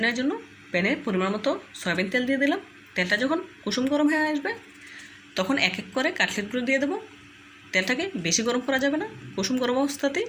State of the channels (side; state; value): both; identical; correlation 1.00